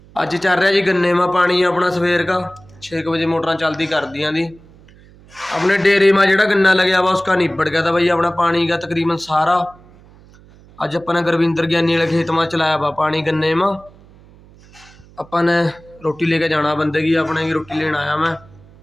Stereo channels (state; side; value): noise; right; hum, 25 dB below the sound